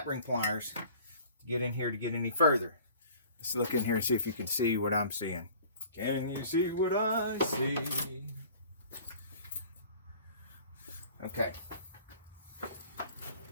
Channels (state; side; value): inverted; both; correlation -0.48